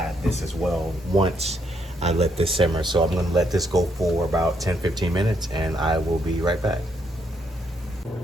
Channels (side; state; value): both; normal; correlation 0.74